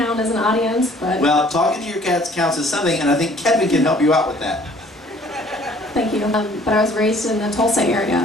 as an audience, but... Well, talking to your cats counts as something, and I think Kevin can help you out with that. Thank you. But I was raised in the Tulsa area.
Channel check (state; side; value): normal; both; correlation 0.56